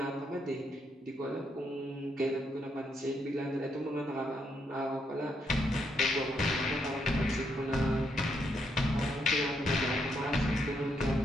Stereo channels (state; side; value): normal; both; correlation 0.77